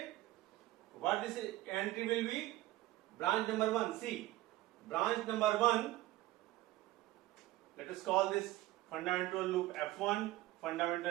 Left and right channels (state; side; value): quieter; left; 16.8 dB